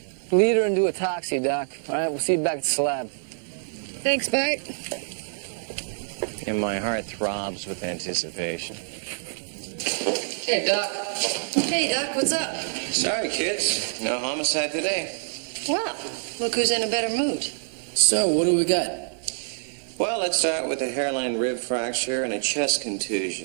Lead her into a taxi, Doc. All right, we'll see you back at the slab. Thanks, Bart. And my heart throbs with anticipation. Hey, Doc. Hey, Doc, what's up? Sorry, kids. No homicide today. Well, look who's in a better mood. So, what do we got? Well, let's start with a hairline rib fracture and a chest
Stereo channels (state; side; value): silent; left; digital silence